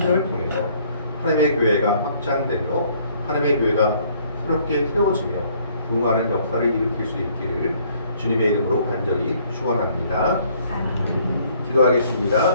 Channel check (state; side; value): inverted; both; correlation -0.62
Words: 통해서 하나님의 교회가 확장되며 하나님의 교회가 새롭게 세워지며 부흥하는 역사를 일으킬 수 있기를 주님의 이름으로 간절히 축원합니다.